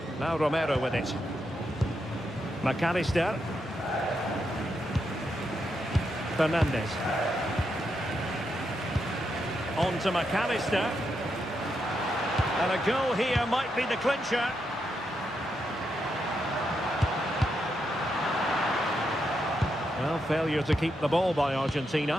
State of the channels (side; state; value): both; normal; correlation 0.83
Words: Now Romero with it. McAllister. Fernandez. On to McAllister. And a goal here might be the clincher. Well, failure to keep the ball by